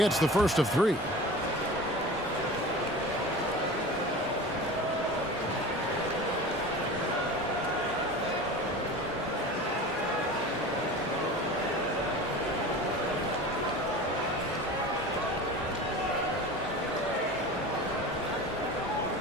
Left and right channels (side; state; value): both; normal; correlation 0.35